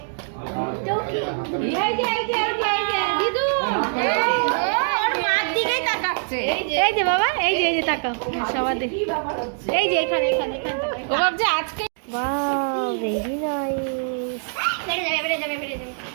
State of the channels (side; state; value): left; silent; 60 dB below the other